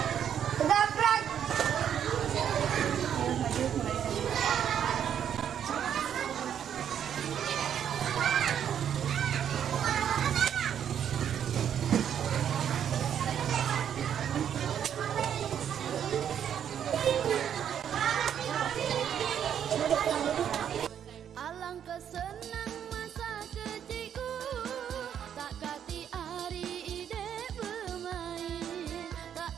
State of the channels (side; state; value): left; quieter; 9.1 dB